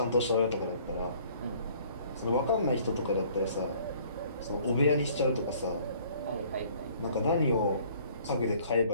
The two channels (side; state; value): both; inverted; correlation -0.56